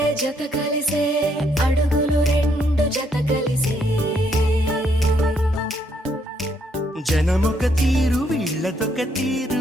అడుగులు రెండు జత కలిసే జనమొక తీరు వీళ్ళదొక తీరు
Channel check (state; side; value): normal; both; correlation 0.72